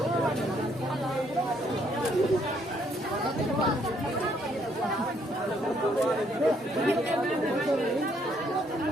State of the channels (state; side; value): normal; both; correlation 0.69